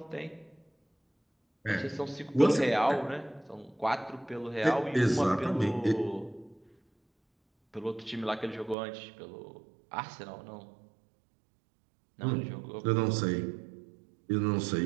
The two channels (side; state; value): left; drops out; at 8.8 s